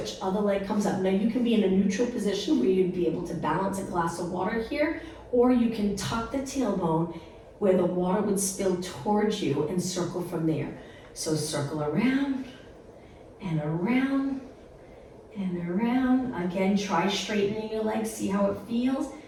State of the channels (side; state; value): both; identical; correlation 1.00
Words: Other leg comes up. Now you can be in a neutral position where you'd be able to balance a glass of water here, or you can tuck the tailbone where the water would spill towards you and circle from there. So circle around and around and around. Again, try straightening your legs, see how it feels.